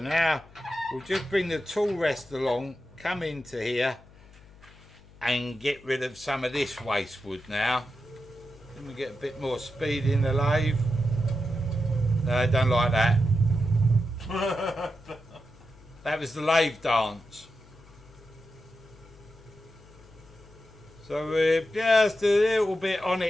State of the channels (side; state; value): left; noise; hum, 24 dB below the sound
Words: we'll just bring the tool rest along, come into here and get rid of some of this waste wood now. Then we get a bit more speed in the lathe. No, I don't like that. That was the lathe dance. So we're just a little bit on